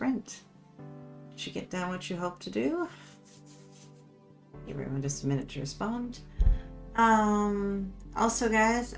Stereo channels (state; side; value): identical; both; correlation 1.00